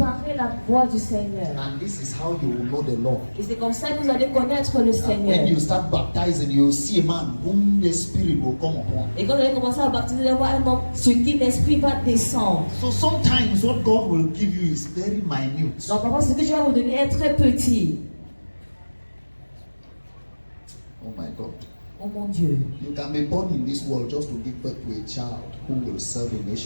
la voie du Seigneur. And this is how you will know the Lord. Et c'est comme ça que vous allez connaître le And Seigneur. when you start baptizing, you will see a man whom the Spirit will come upon. Et quand vous allez commencer à baptiser, vous allez voir un homme sur qui l'Esprit va descendre. So sometimes what God will give you is very minute. Donc parfois, ce que Dieu va vous donner est très petit. Oh my God. Oh mon Dieu. You can be born in this world just to give birth to a child who will serve a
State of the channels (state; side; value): inverted; both; correlation -1.00